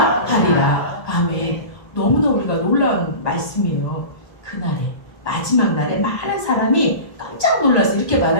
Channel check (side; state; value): right; late; 1.9 ms